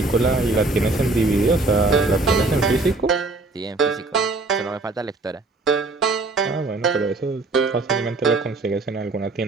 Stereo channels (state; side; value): quieter; left; 3.3 dB